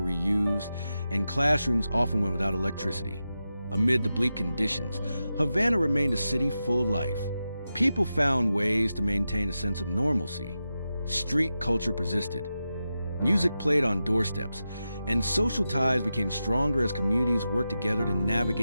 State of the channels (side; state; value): both; inverted; correlation -0.91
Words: and classrooms often went without electricity. Amid the bleak conditions, Havana remained a city full of life. People found ways to maintain a sense of normalcy. Street culture persisted. Music played on doorsteps, and social ties became stronger as communities worked together to